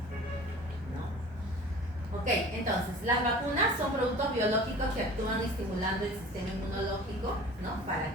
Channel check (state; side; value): normal; both; correlation 0.42